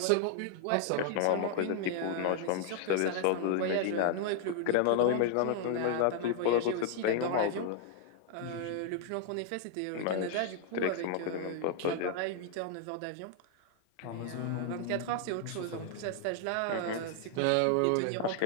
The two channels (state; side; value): different; both; correlation 0.00